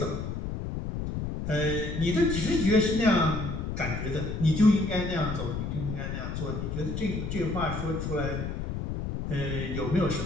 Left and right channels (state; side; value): noise; left; rumble, 4 dB below the sound